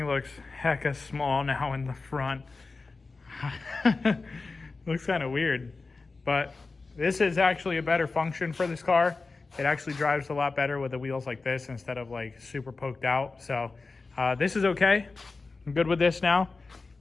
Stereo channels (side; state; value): right; quieter; 3.9 dB